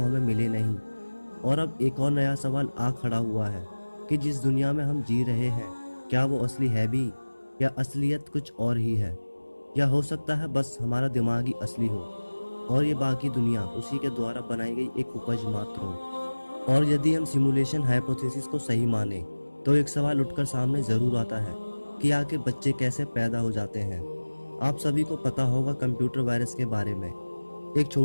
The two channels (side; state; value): both; inverted; correlation -1.00